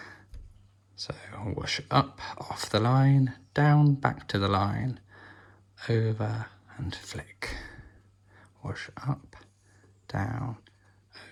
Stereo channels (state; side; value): identical; both; correlation 1.00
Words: So whoosh up, off the line, down, back to the line, over and flick. Whoosh up, down,